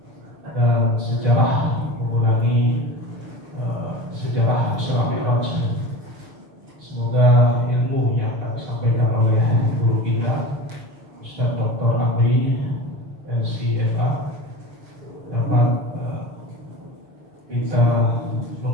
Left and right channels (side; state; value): left; late; 6.5 ms